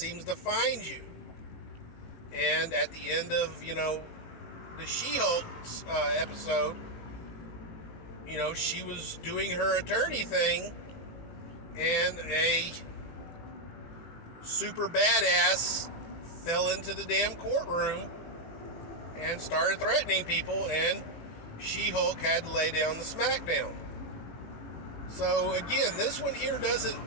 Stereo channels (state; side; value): late; right; 18 ms